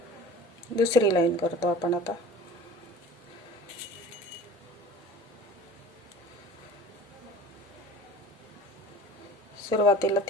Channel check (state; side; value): normal; both; correlation 0.43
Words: दुसरी लाईन करतो आपण आता। सुरुवातीला